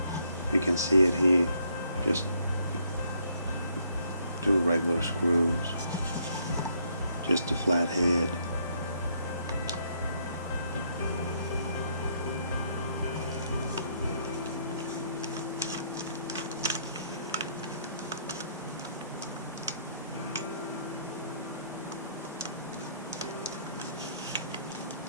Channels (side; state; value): both; inverted; correlation -0.69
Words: you can see it here, just 2 regular screws, just a flat head.